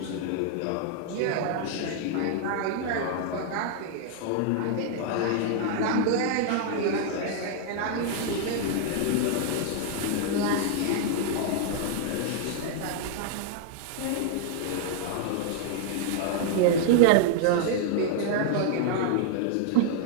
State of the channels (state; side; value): different; both; correlation 0.00